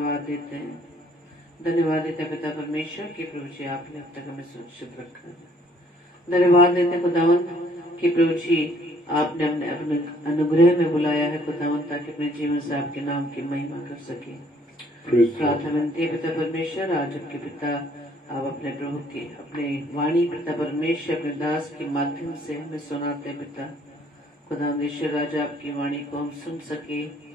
देते हैं। धन्यवाद देते हैं पिता परमेश्वर कि प्रभु जी आपने अब तक हमें सुरक्षित रखा है। धन्यवाद देते हैं खुदावंत कि प्रभु जी आपने अपने अनुग्रह में बुलाया है खुदावंत, ताकि अपने जीवन से आपके नाम की महिमा कर सके। प्रार्थना विनती है पिता परमेश्वर, आज आपके पिता आप अपने प्रभु की अपने वाणी पिता परमेश्वर अपने दास के माध्यम से हमें सुनाते हैं। पिता खुदावंत राजा आपकी वाणी को हम सुन सके,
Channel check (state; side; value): normal; both; correlation 0.62